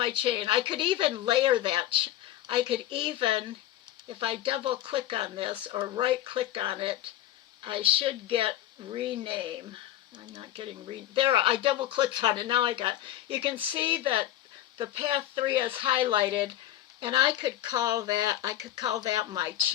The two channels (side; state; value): right; quieter; 13.1 dB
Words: chain. I could even layer that. I could even, if I double click on this or right click on it, I should get rename. I'm not getting there. I double clicked on it. Now I got. You can see that the path 3 is highlighted, and I could call that. I could call that my